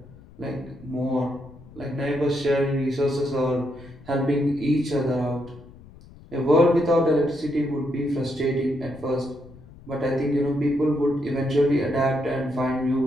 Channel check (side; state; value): left; noise; rumble, 21 dB below the sound